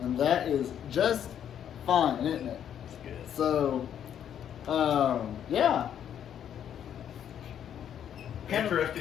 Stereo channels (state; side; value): quieter; right; 9.5 dB